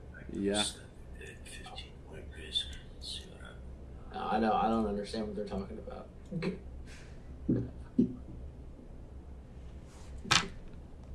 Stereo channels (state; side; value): identical; both; correlation 1.00